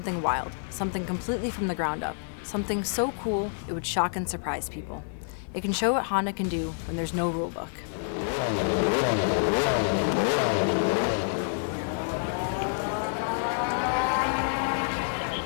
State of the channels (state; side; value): silent; right; 55 dB below the other